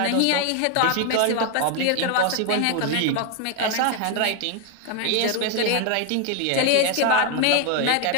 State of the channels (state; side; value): different; both; correlation 0.01